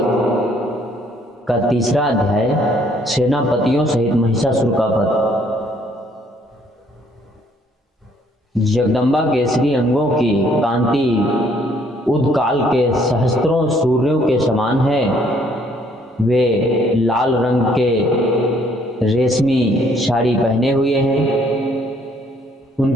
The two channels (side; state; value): both; normal; correlation 0.64